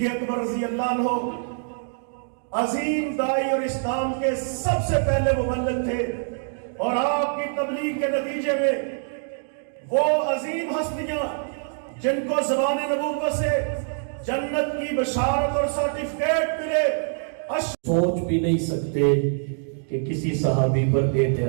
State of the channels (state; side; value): silent; left; digital silence